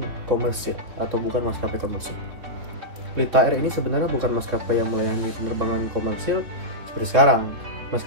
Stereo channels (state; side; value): late; left; 3.8 ms